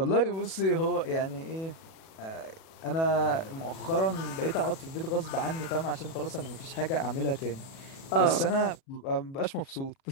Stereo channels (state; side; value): late; right; 37 ms